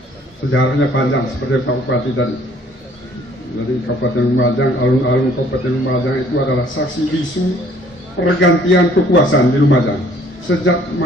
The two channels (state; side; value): normal; both; correlation 0.59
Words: Sejarahnya panjang seperti Pak Bupati tadi. Jadi Kabupaten Lumajang, alun-alun Kabupaten Lumajang itu adalah saksi bisu pergantian kekuasaan di Lumajang sejak